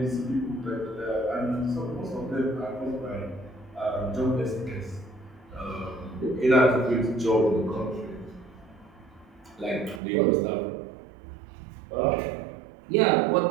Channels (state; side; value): drops out; left; at 10.0 s